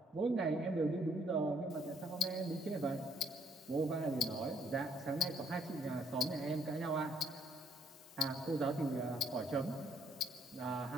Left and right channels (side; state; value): both; normal; correlation 0.67